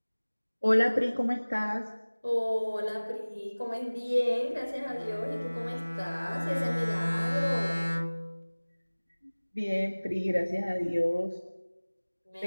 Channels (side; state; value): both; inverted; correlation -1.00